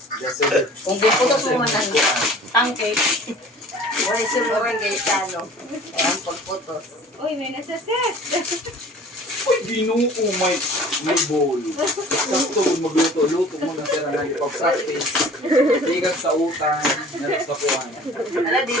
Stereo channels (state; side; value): normal; both; correlation 0.46